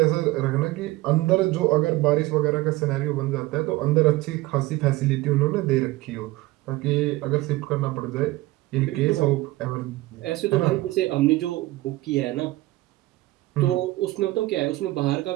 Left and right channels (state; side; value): quieter; left; 18.9 dB